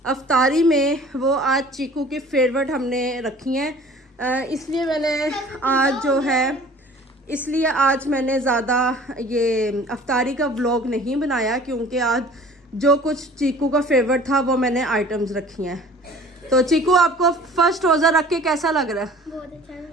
अफ्तारी में वो आज चीकू की फेवरेट हमने रखी हैं। इसलिए मैंने आज जो है इसलिए आज मैंने ज़्यादा ये अफ्तारी का व्लॉग नहीं बनाया, क्योंकि आज जो कुछ चीकू का फेवरेट था वो मैंने आइटम्स रखी हैं। तो चीकू आपको फर्स्ट रोज़ा रख के कैसा लग रहा है? बहुत अच्छा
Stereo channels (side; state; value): both; normal; correlation 0.47